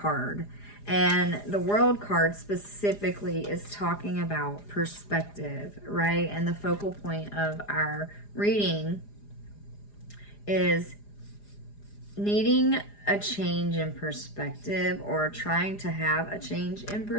And the World card specifically is talking about perspective, right? And the focal point of our reading is needing a change in perspective, or trying to have a change in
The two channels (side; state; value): right; late; 4.9 ms